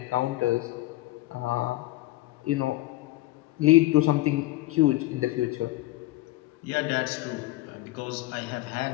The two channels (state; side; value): quieter; right; 18.0 dB